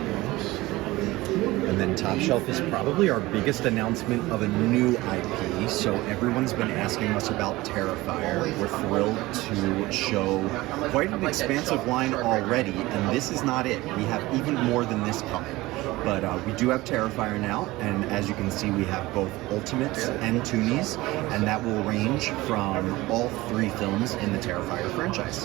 And then Top Shelf is probably our biggest announcement of a new IP. So everyone's been asking us about Terrifier. We're thrilled to show quite an expansive line already, and this is not it. We have even more than this coming. But we do have Terrifier now, and as you can see, we have both Ultimates and Toonies, and that will range from all 3 films in the Terrifier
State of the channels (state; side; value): quieter; left; 19.4 dB